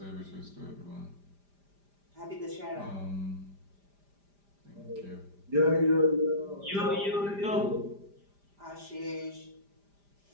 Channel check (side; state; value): left; late; 5.0 ms